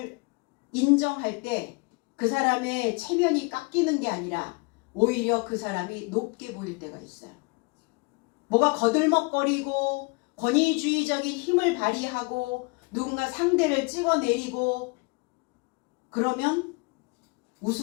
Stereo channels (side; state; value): right; quieter; 29.9 dB